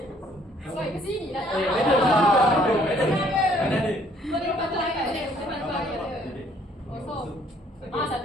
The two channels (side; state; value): both; normal; correlation 0.62